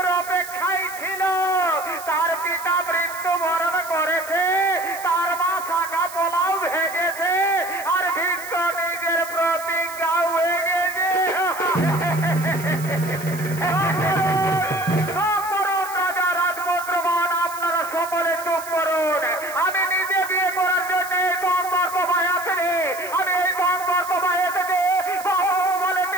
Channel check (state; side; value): noise; right; hiss, 14 dB below the sound